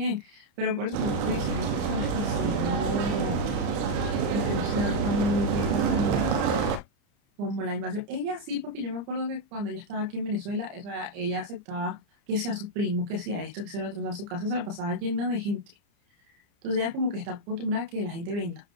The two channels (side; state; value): left; late; 30 ms